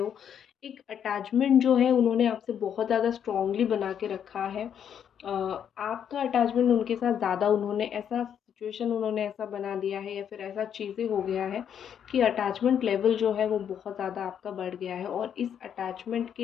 एक अटैचमेंट जो है उन्होंने आपसे बहुत ज़्यादा स्ट्रॉन्गली बना के रखा है। आपका अटैचमेंट उनके साथ ज़्यादा, उन्होंने ऐसा सिचुएशन उन्होंने ऐसा बना दिया है, या फिर ऐसा चीज़ें हो गया है कि अटैचमेंट लेवल जो है वो बहुत ज़्यादा आपका बढ़ गया है, और इस अटैचमेंट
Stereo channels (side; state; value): right; quieter; 8.7 dB